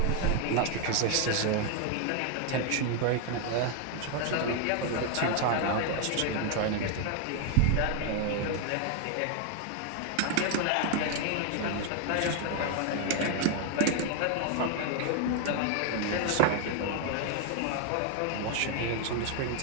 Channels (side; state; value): both; different; correlation 0.01